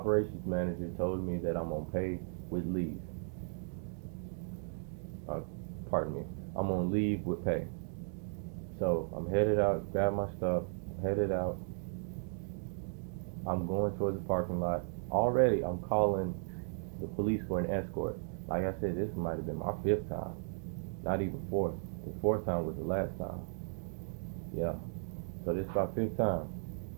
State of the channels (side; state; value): left; silent; digital silence